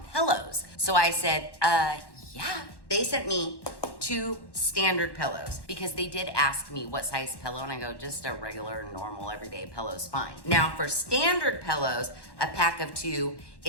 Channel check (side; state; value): right; late; 1.1 ms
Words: pillows. So I said, yeah. They sent me 2 standard pillows because they did ask me what size pillow, and I go, just a regular, normal, everyday pillow's fine. Now for standard pillows, a pack of 2